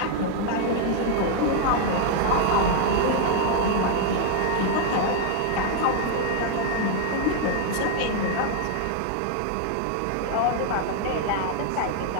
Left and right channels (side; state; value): both; different; correlation 0.00